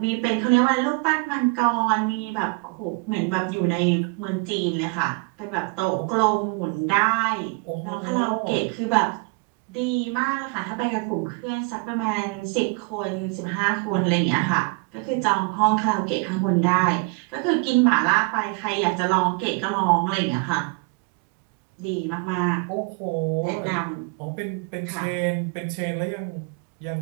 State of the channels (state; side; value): quieter; left; 30.2 dB